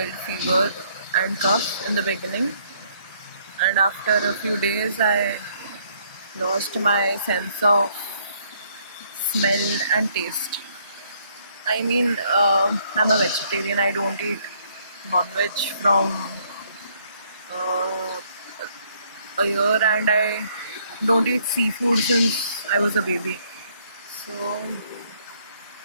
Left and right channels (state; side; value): inverted; both; correlation -0.67